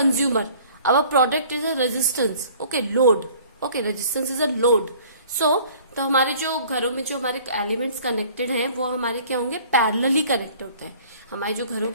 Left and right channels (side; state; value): both; inverted; correlation -0.51